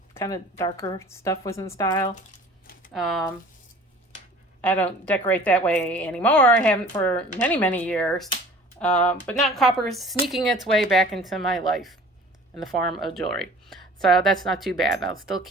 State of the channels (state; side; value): normal; both; correlation 0.47